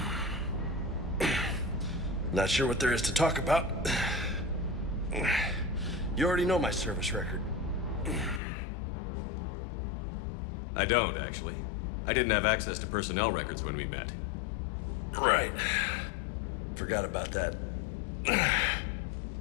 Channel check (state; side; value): drops out; right; at 8.4 s